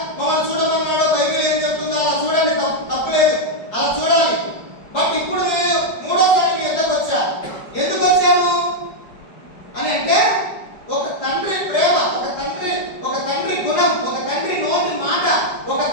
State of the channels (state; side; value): late; right; 4.8 ms